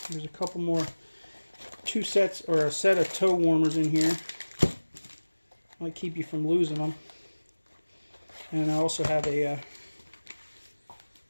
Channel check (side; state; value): both; inverted; correlation -1.00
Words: There's a couple more, 2 sets or a set of toe warmers in here. Might keep you from losing them. And I also have a